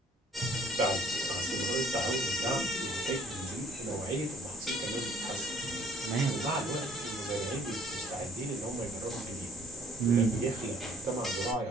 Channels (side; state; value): both; normal; correlation 0.57